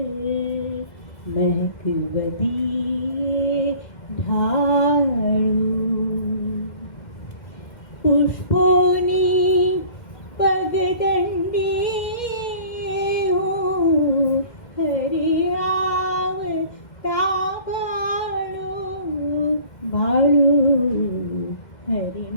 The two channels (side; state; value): right; late; 2.1 ms